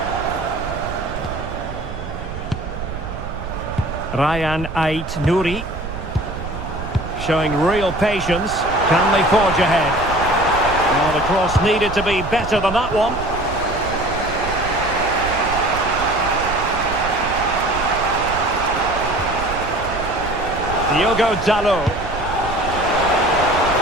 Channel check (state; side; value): noise; right; rumble, 9 dB below the sound